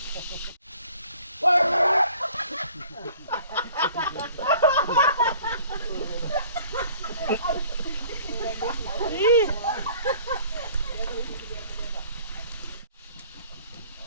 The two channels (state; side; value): inverted; both; correlation -0.53